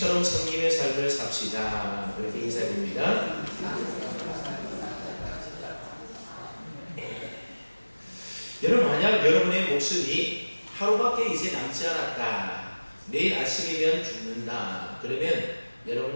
섬김의 삶을 삽시다. 그렇게 인사드립니다. 여러분, 만약 여러분의 목숨이 하루밖에 이제 남지 않았다, 내일 아침이면 죽는다, 그러면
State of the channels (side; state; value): both; inverted; correlation -1.00